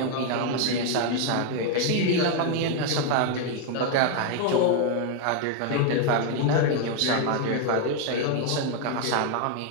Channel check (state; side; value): different; both; correlation 0.00